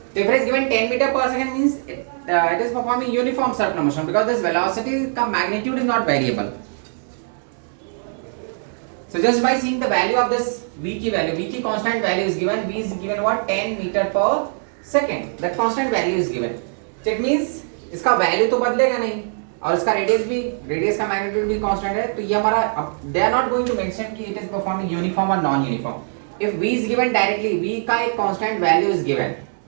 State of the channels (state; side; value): silent; left; 65 dB below the other